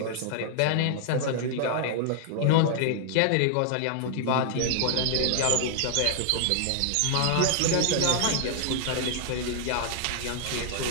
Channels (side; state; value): both; different; correlation 0.00